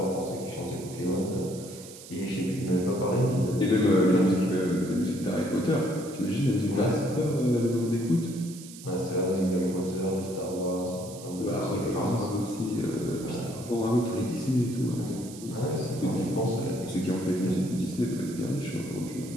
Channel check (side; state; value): right; noise; hiss, 16 dB below the sound